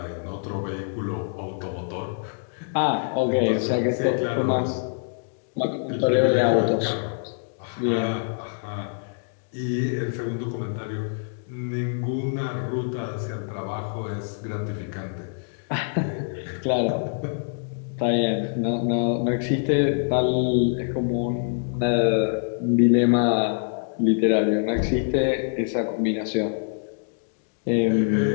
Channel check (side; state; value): right; silent; digital silence